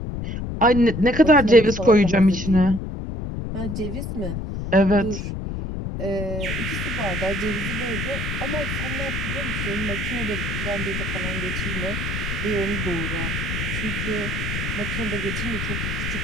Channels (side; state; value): left; noise; rumble, 4 dB below the sound